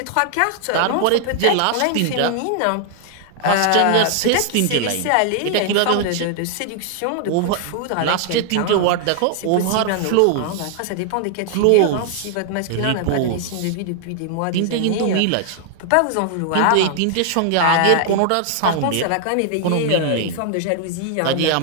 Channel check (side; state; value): both; different; correlation 0.00